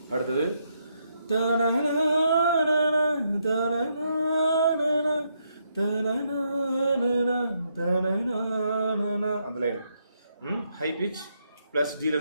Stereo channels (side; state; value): both; inverted; correlation -0.77